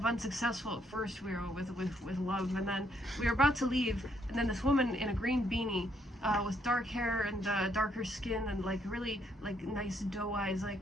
unsuccessful at first. We were with love, and then we were about to leave, and then this woman in a green beanie with dark hair and darker skin and like really like nice doe eyes, like.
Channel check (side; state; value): both; normal; correlation 0.72